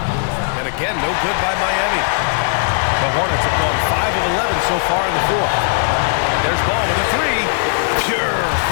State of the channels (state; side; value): silent; right; 64 dB below the other